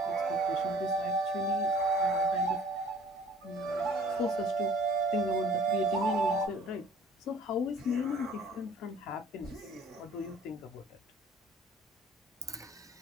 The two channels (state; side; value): normal; both; correlation 0.50